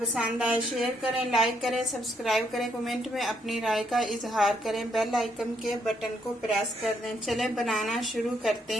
आए शेयर करें, लाइक करें, सब्सक्राइब करें, कमेंट में अपनी राय का इजहार करें, बेल आइकन के बटन को प्रेस कर दें। चलें बनाना शुरू करते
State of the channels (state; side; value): normal; both; correlation 0.74